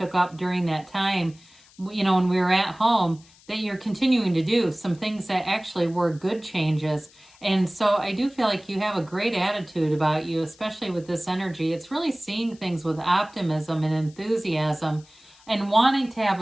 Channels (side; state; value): left; noise; hiss, 27 dB below the sound